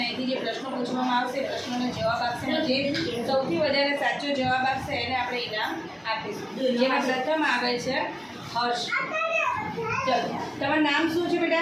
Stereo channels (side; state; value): both; identical; correlation 1.00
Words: અહીંથી જે પ્રશ્નો પૂછવામાં આવશે પ્રશ્નોનો જવાબ આપશે અને જે સૌથી વધારે સાચો જવાબ આપશે એને આપણે ઇનામ આપીશું. જેમાં પ્રથમ આવે છે હર્ષ. ચલો, તમારું નામ શું છે